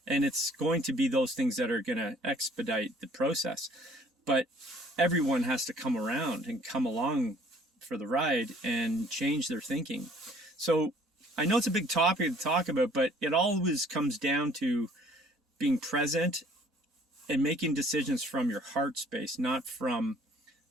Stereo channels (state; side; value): normal; both; correlation 0.58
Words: And it's going to be those things that are going to expedite the process. But everyone has to come around and come along for the ride and change their thinking. So I know it's a big topic to talk about, but it always comes down to being present and making decisions from your heart space, not from